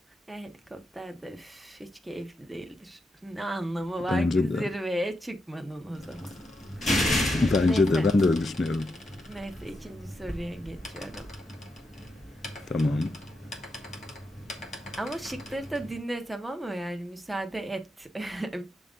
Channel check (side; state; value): both; normal; correlation 0.84